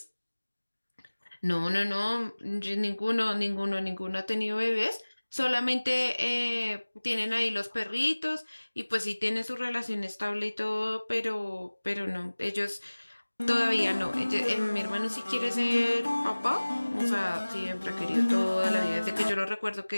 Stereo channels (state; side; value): inverted; both; correlation -1.00